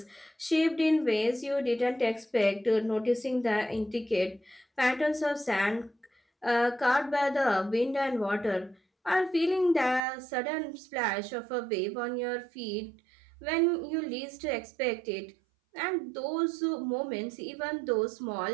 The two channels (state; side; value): drops out; left; at 10.0 s